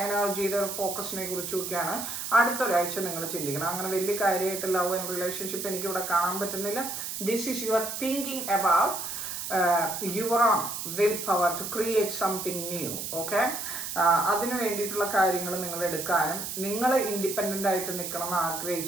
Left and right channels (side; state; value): right; noise; hiss, 5 dB below the sound